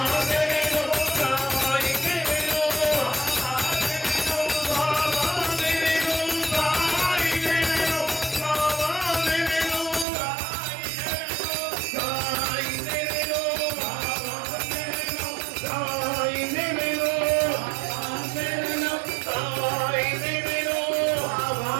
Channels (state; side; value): drops out; left; at 10.1 s